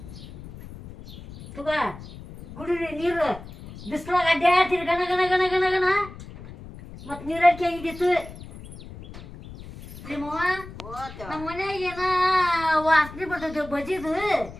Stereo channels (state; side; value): noise; left; rumble, 15 dB below the sound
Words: ತುಗ ಕುಡಿರಿ ನೀರು ಬಿಸಿಲಾಗ ಅಡ್ಡಾಡ್ತೀರಿ ಗಣ ಗಣ ಗಣ ಗಣ ಗಣ ಮತ್ತು ನೀರಡಿಕೆ ಆಗಿದ್ದಿತ್ತು ನಿಮ್ಮವ್ವ ನಮ್ಮ ಮನ್ಯಾಗ ಏನ ವಾಸನೆ ಬರ್ತೈತಿ ಬಜಿದು